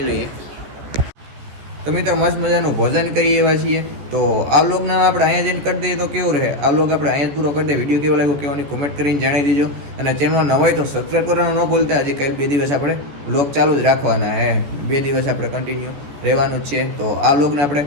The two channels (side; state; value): left; late; 14 ms